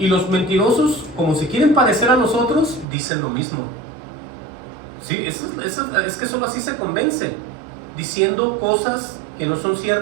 los mentirosos, como se quieren parecer a nosotros, dicen lo mismo. ¿Sí? Es que solo así se convence. Diciendo cosas que no son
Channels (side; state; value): left; drops out; at 2.9 s